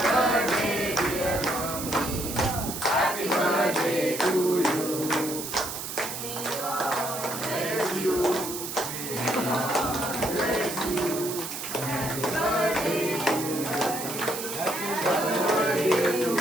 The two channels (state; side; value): noise; right; hiss, 6 dB below the sound